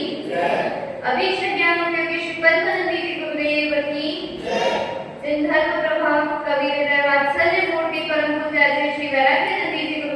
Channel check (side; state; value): both; identical; correlation 1.00